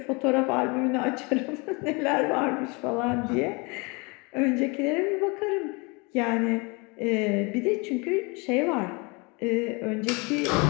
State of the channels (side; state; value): right; quieter; 29.0 dB